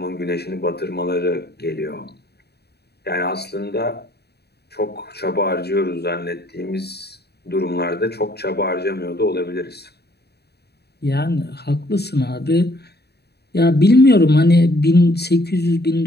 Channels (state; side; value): late; right; 0.48 ms